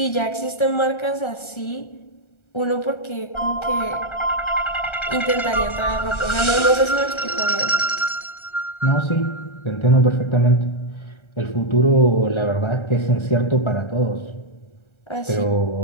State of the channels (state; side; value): late; right; 1.3 ms